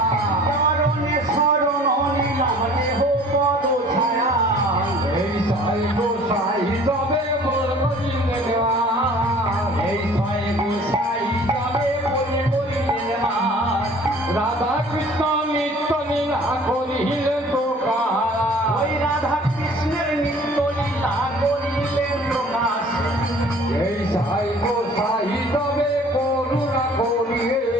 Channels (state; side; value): normal; both; correlation 0.50